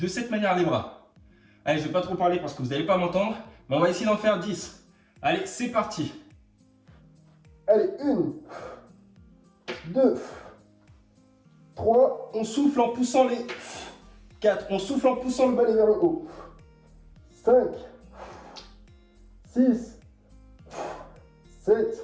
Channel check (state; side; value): identical; both; correlation 1.00